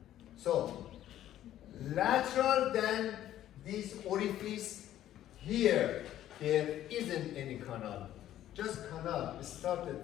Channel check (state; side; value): quieter; right; 12.4 dB